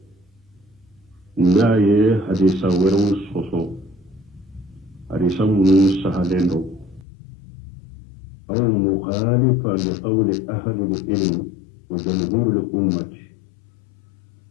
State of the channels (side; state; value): right; drops out; at 7.1 s